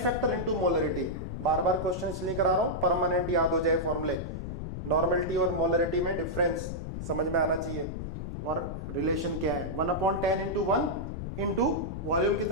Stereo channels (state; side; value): noise; left; rumble, 6 dB below the sound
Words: into molarity. बार बार क्वेश्चन इसलिए करा रहा हूं, परमानेंट याद हो जाए फॉर्मूले। नॉर्मेलिटी और मोलरिटी में डिफरेंस समझ में आना चाहिए, और रिलेशन क्या है? 1/10 इंटू 1 इंटू वॉल्यूम